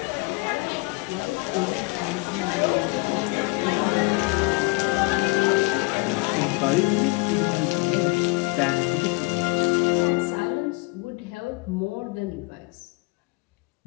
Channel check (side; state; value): right; quieter; 27.3 dB